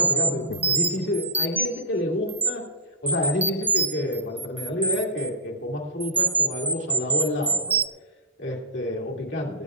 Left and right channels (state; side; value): normal; both; correlation -0.18